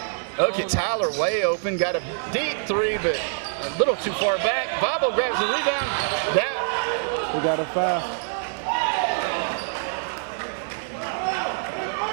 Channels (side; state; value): left; silent; digital silence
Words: Look at Tyler way open. Got a deep 3, but a little too far back. Bobo grabs the rebound. We got a foul.